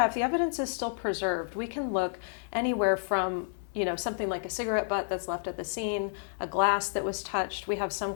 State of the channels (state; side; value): silent; right; digital silence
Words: the evidence is still preserved, we can look anywhere from something like a cigarette butt that's left at the scene, a glass that was touched. We have some